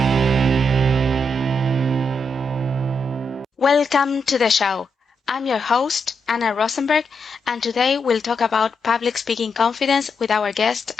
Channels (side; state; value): both; normal; correlation 0.82